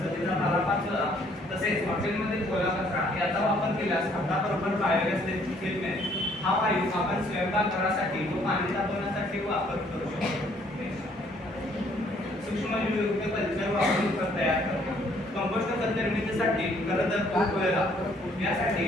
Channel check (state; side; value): normal; both; correlation 0.64